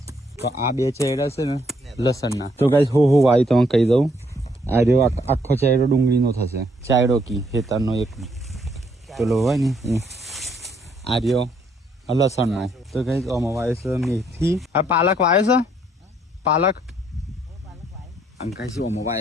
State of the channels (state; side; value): normal; both; correlation 0.69